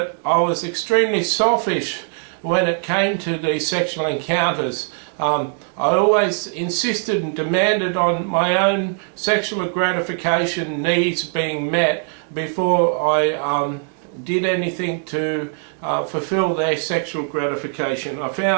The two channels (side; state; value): left; silent; 57 dB below the other